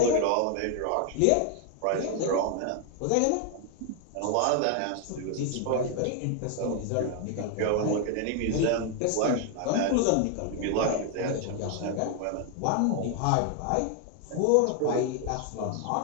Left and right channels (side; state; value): both; different; correlation 0.00